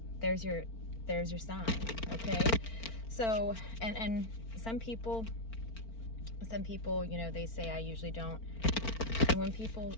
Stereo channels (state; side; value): late; right; 4.4 ms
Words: there's your sign, okay? So, and some people, you know, they say I usually don't. And when people